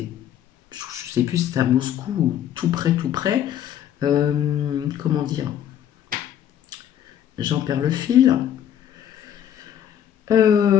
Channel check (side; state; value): right; quieter; 10.2 dB